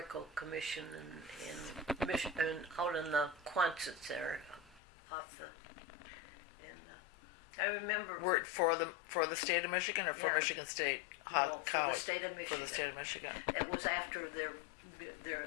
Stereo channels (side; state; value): right; drops out; at 4.8 s